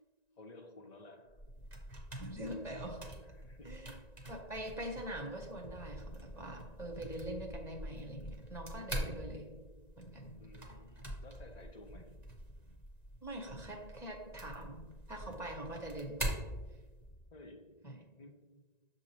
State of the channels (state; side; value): late; right; 1.9 ms